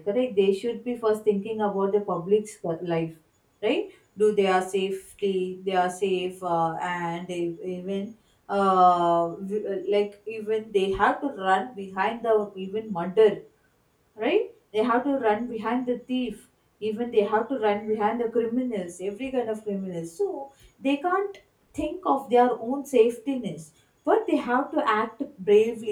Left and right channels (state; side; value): identical; both; correlation 1.00